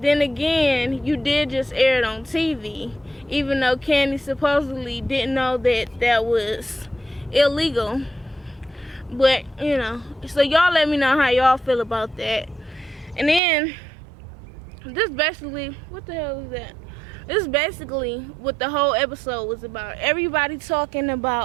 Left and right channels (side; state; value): left; drops out; at 13.4 s